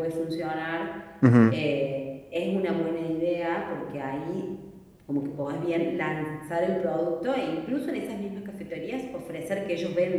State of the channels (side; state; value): both; identical; correlation 1.00